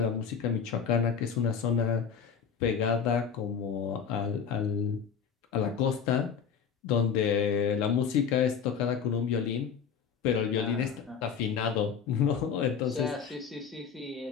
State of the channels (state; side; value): quieter; right; 7.0 dB